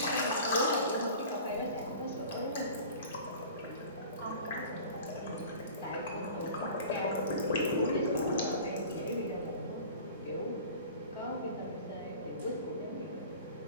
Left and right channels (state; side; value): inverted; both; correlation -0.41